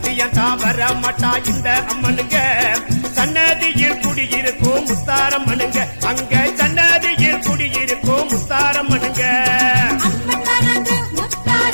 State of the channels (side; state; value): both; inverted; correlation -1.00